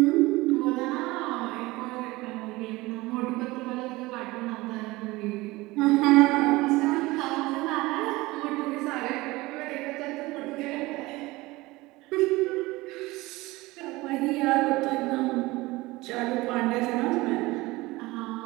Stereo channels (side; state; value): left; quieter; 20.7 dB